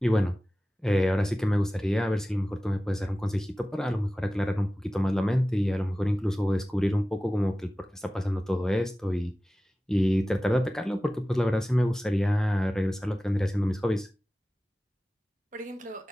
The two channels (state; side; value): normal; both; correlation 0.96